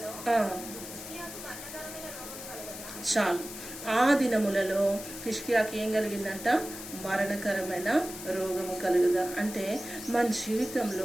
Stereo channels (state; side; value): noise; left; hiss, 11 dB below the sound